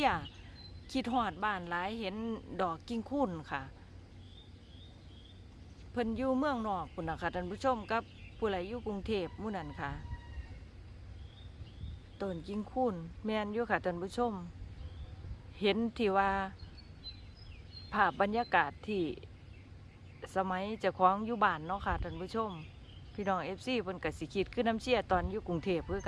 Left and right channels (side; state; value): both; identical; correlation 1.00